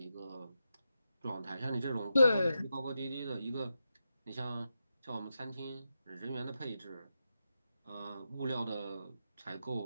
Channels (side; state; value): both; inverted; correlation -0.88